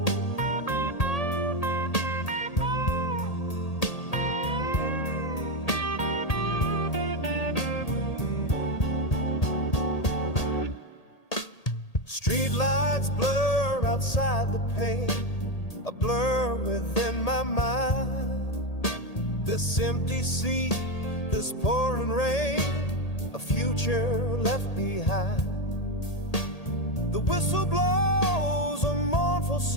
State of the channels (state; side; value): late; right; 1.8 ms